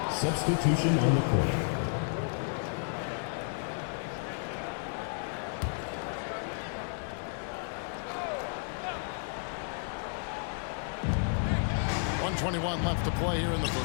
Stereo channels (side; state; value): right; silent; 56 dB below the other